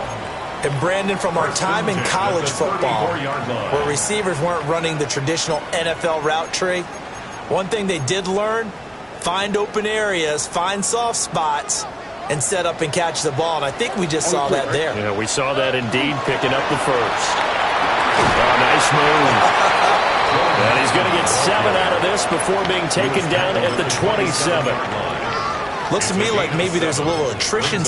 And Brandon, from our time in college football, where receivers weren't running the traditional NFL route tree, one thing they did learn, find open areas, find soft spots, and set up and catch the ball. And I think we just saw that there. Yeah, we saw that indeed, picking up the 1st. Oh, nice move. And he's going to get 7 out of this before being taken down at the 27. Looks to me like maybe there's a little attrition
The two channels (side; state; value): both; identical; correlation 1.00